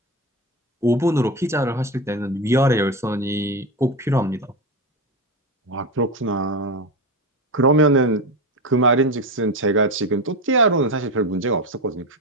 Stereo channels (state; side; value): normal; both; correlation 0.18